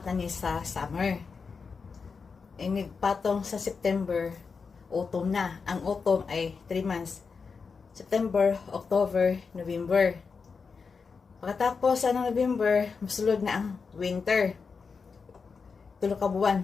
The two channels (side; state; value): right; quieter; 5.2 dB